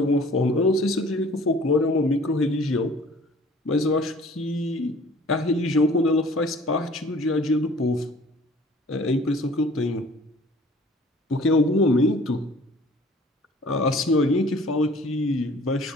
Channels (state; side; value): normal; both; correlation 0.51